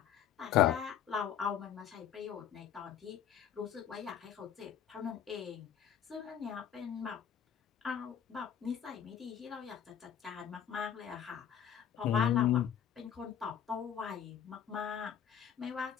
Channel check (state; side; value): quieter; right; 9.3 dB